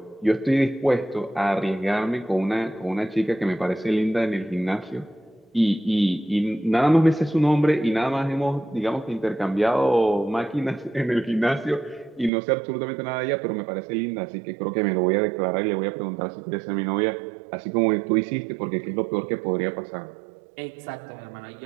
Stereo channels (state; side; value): drops out; left; at 12.3 s